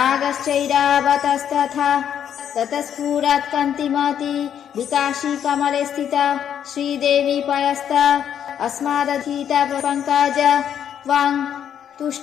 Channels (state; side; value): quieter; right; 9.2 dB